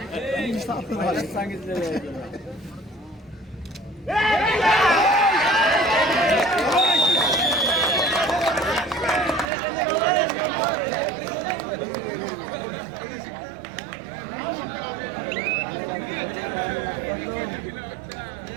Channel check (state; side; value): drops out; left; at 9.5 s